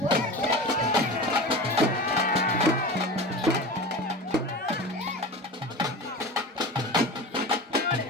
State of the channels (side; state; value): both; normal; correlation 0.30